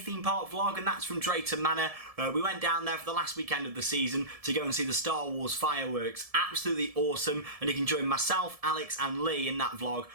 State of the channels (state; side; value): late; left; 1.7 ms